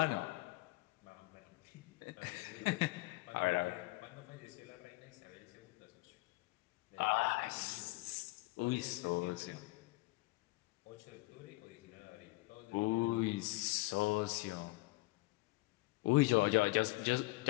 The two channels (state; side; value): quieter; right; 22.3 dB